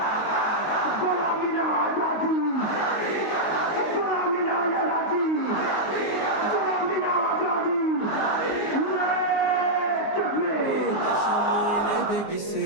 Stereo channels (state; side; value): late; right; 19 ms